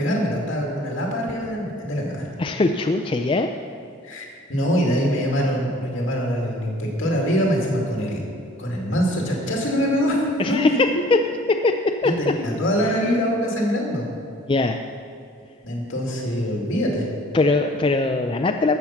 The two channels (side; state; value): both; normal; correlation 0.53